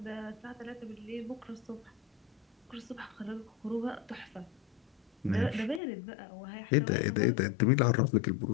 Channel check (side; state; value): right; drops out; at 5.8 s